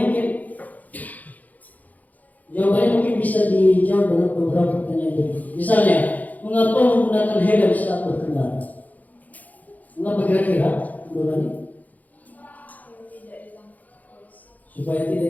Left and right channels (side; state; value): right; late; 0.079 ms